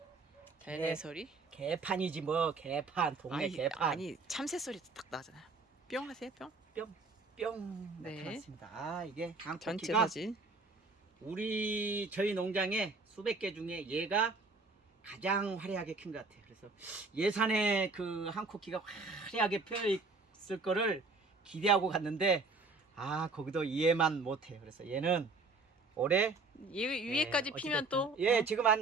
자연의 개. 소리? 개판이지 뭐. 개판. 동네 개판. 아니 참새 소리 딱 나잖아요. 뿅 하세요 뿅. 뿅 네. 나타났습니다. 아, 이게 전체 앙코키가 사진. 저희 농장에 수백 개 중에 얘가 가장 화려하게 큰 것 같아요. 그래서 예산에 그 한코키가 화려하게 펴 있을 거를 기대하고 갔는데, 아, 거기도 이해만 못해요. 그래서 얘는 올해 위에까지 피면 또 예, 지금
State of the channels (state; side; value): quieter; left; 3.7 dB